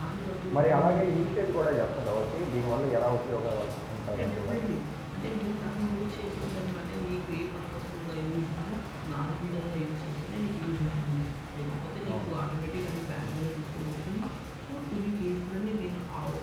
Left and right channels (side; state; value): both; identical; correlation 1.00